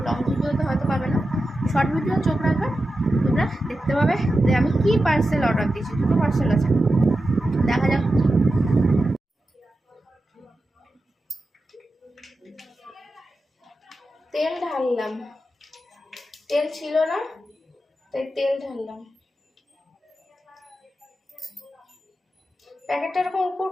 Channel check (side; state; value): both; normal; correlation 0.91